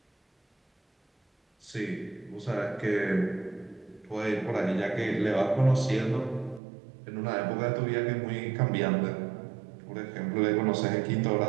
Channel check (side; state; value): left; drops out; at 6.6 s